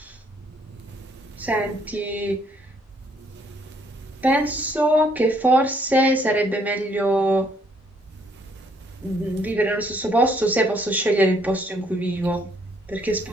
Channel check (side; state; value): both; normal; correlation 0.67